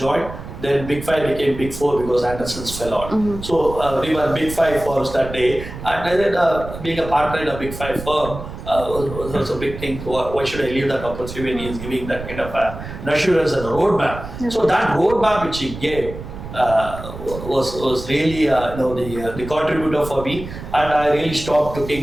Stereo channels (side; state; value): right; noise; rumble, 11 dB below the sound